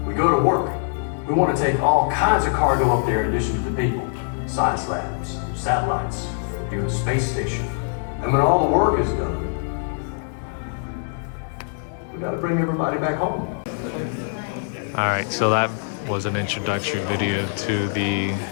we go to work. We want to take all kinds of cargo up there in addition to the people. Science labs, satellites, even a space station. And when all the work is done, we gotta bring everybody back home. Alright, so that was an introductory video to the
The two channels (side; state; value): right; silent; digital silence